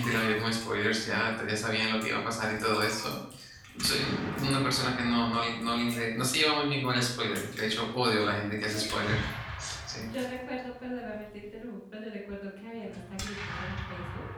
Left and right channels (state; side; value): identical; both; correlation 1.00